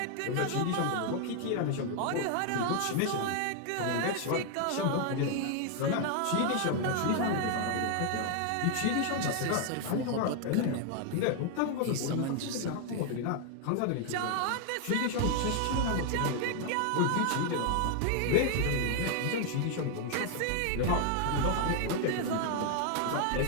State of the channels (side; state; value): both; different; correlation 0.00